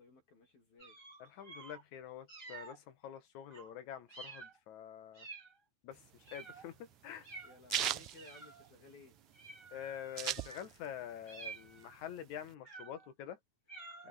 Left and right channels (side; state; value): right; late; 9.4 ms